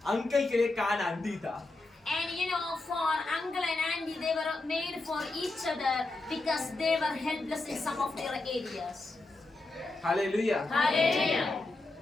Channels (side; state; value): right; quieter; 3.1 dB